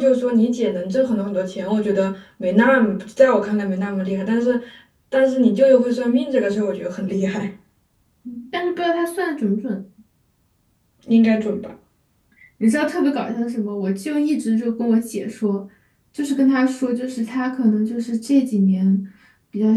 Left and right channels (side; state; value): both; identical; correlation 1.00